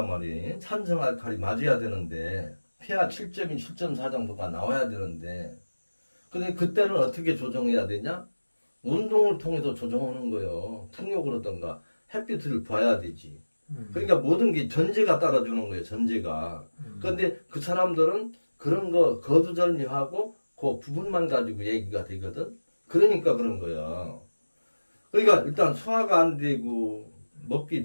말이에요. 산성 알칼리 맞아야 되는데 pH 7.2, 7.4 정도가 나와야 되는데 근데 그때는 어떻게 조정해야 되냐? 운동을 통해서 조정하는 거예요. 풍욕을 하던가 햇빛을 봐야 되지. 그러니까 모든 게 전제가 따라주는 거예요. 전제가. 그런데 그 사람들은 그런 거 거두절미하고 그 부분만 가지고 얘기가 되거든. 그러니까 그런 거야. 그러니까 일단 소화가 안 되고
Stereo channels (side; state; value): both; inverted; correlation -1.00